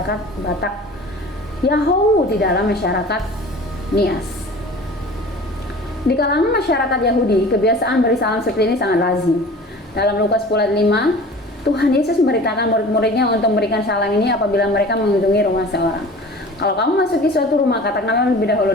Batak, Yahoo di dalam masyarakat Nias. Di kalangan masyarakat Yahudi, kebiasaan beri salam seperti ini sangat lazim. Dalam Lukas 10 ayat 5, Tuhan Yesus memberitakan murid-muridnya untuk memberikan salam ini apabila mereka mengunjungi rumah seorang. Kalau kamu masuki suatu rumah, katakanlah lebih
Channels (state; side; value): normal; both; correlation 0.42